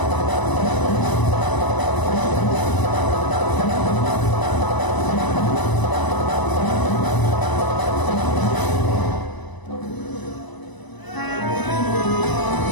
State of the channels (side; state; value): right; late; 1.0 ms